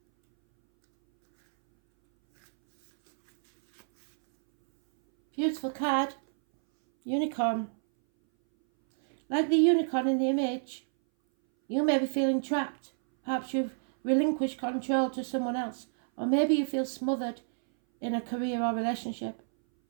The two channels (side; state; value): left; silent; 59 dB below the other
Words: Beautiful card. Unicorn. Like the unicorn in the image, you may be feeling trapped. Perhaps you've relinquished control to someone else. Or maybe you feel smothered in a career or relationship.